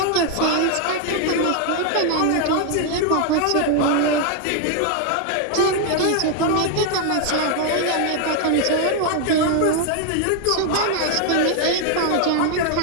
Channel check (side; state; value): both; different; correlation 0.00